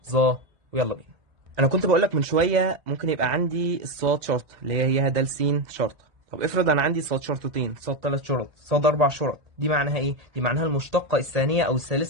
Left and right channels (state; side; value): late; left; 2.0 ms